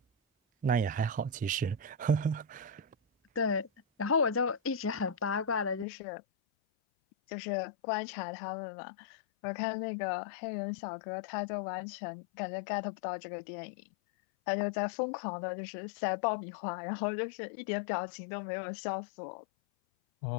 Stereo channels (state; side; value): drops out; right; at 5.9 s